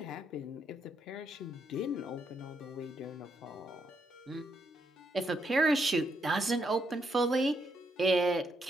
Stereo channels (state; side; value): normal; both; correlation 0.77